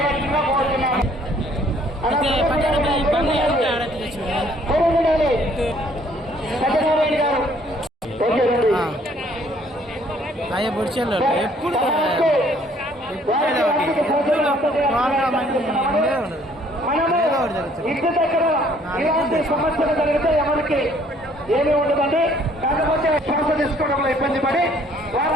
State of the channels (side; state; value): both; normal; correlation 0.61